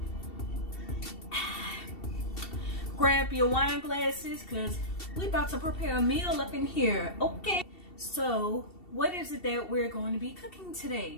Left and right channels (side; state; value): right; late; 2.7 ms